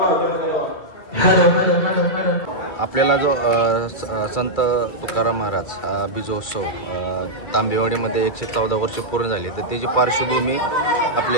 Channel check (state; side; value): late; right; 2.3 ms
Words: आपल्याला जो संत तुकाराम महाराज बीजोत्सव तांबेवाडीमध्ये 114 वर्ष पूर्ण झाली, तर त्याची पार्श्वभूमी